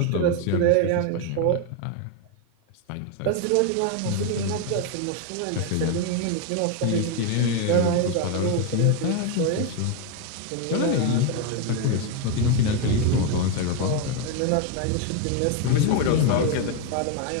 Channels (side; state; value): both; different; correlation 0.01